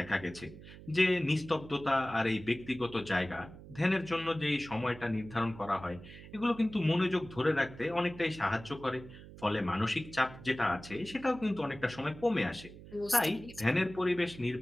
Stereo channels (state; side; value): noise; right; hum, 16 dB below the sound